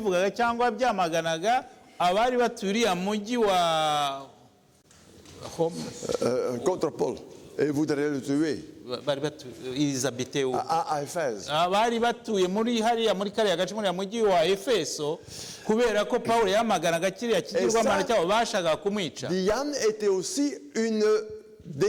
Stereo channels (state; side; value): identical; both; correlation 1.00